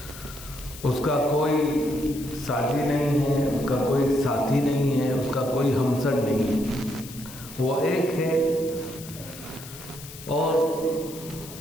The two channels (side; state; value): left; noise; hiss, 15 dB below the sound